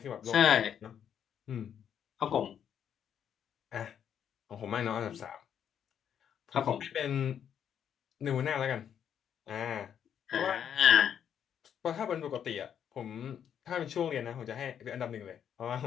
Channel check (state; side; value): quieter; right; 8.8 dB